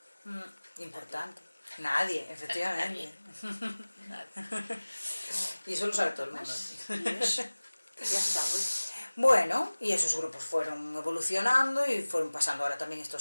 Importante. Nadie, efectivamente. Nadie. Y eso lo sabe todo el mundo. Y eso, ya está hoy. Bueno, y esos grupos fueron evolucionando y fueron pasando ahora también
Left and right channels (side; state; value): both; inverted; correlation -1.00